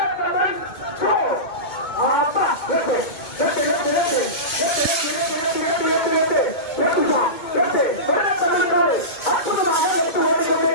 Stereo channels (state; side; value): late; right; 2.2 ms